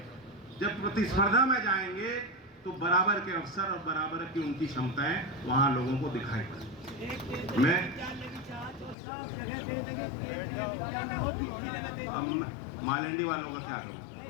जब प्रतिस्पर्धा में जाएंगे तो बराबर के अवसर और बराबर की उनकी क्षमताएं वहां लोगों को दिखाई पड़े। मैं मालंडी वालों को क्या करूं?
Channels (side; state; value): right; drops out; at 9.0 s